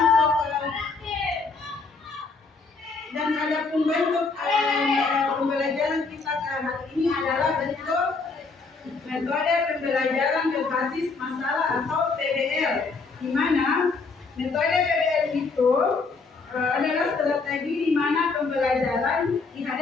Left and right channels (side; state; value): right; quieter; 4.2 dB